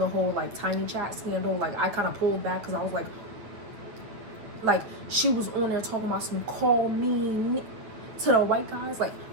whole like Tiny Chat scandal. Like I kind of pulled back because I was like she was on there talking about some call me to the white guys. Like,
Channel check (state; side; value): late; left; 8.9 ms